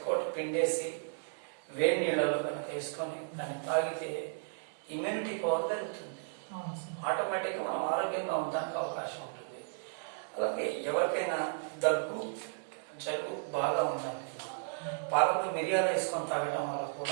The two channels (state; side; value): silent; left; digital silence